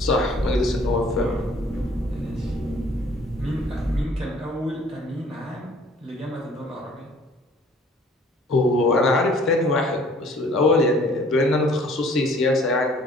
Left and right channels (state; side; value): normal; both; correlation 0.55